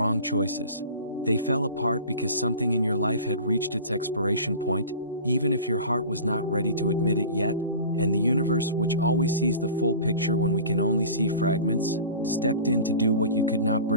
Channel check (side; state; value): both; inverted; correlation -0.37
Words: choices. They fell apart because something in your life had reached its expiration point, even if your heart was not ready to admit it yet, and the universe, which always sees the full picture when we can only see fragments, stepped in to do what you could not